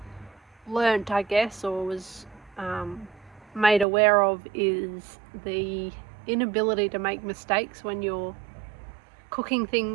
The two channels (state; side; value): drops out; left; at 3.9 s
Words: learnt, I guess, or was made aware of is the inability to make mistakes when you're cooking